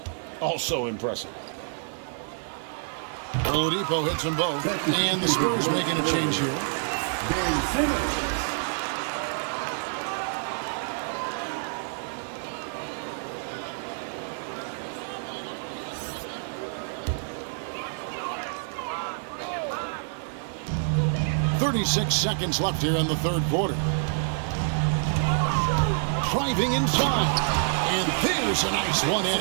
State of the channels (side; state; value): left; silent; 60 dB below the other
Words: also impressive. Oladipo hits them both, and the Spurs making a change here. Simmons. 36 seconds left here in the third quarter. Driving inside. And there's a nice